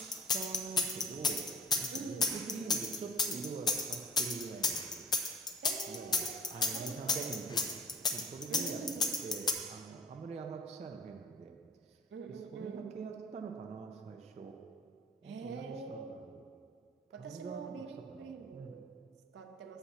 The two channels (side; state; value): both; normal; correlation 0.47